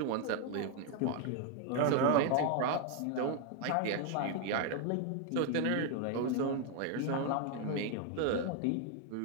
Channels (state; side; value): different; both; correlation 0.01